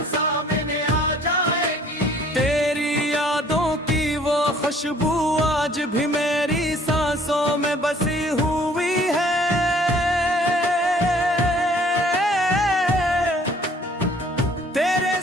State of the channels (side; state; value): both; normal; correlation 0.57